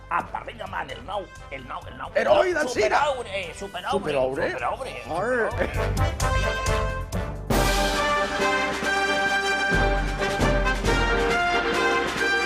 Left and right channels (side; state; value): both; identical; correlation 1.00